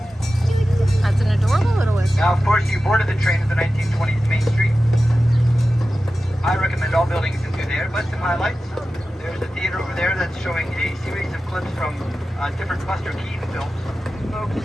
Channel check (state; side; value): normal; both; correlation 0.94